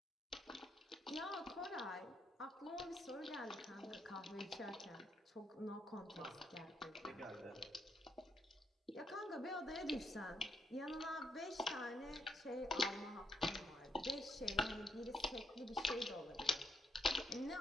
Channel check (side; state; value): both; normal; correlation 0.76